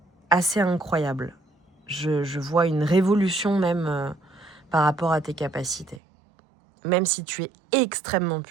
assez incroyable. Je vois une révolution même par rapport à tes capacités. Même si tu es extrêmement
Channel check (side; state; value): left; drops out; at 6.0 s